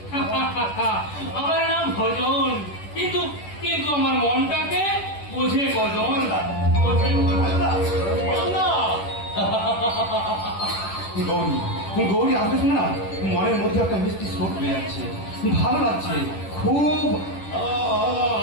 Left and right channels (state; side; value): late; right; 10 ms